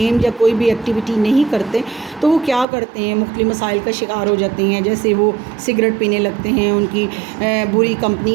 یا کوئی بھی ایکٹیویٹی نہیں کرتے تو وہ کیا کرتے ہیں، مختلف مسائل کا شکار ہو جاتے ہیں۔ جیسے وہ سگریٹ پینے لگتے ہیں، ان کی بری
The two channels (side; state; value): left; drops out; at 2.7 s